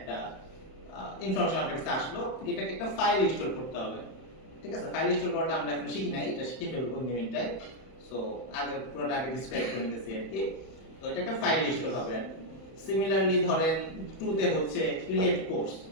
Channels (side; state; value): right; late; 31 ms